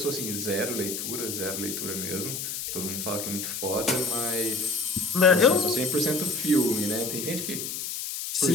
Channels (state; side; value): noise; left; hiss, 5 dB below the sound